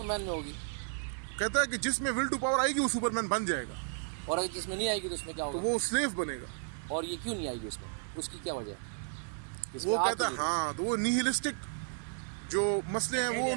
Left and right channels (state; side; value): silent; left; 56 dB below the other